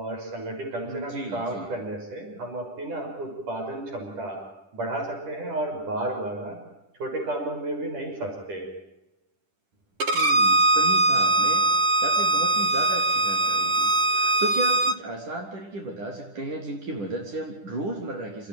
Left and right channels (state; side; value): late; left; 10 ms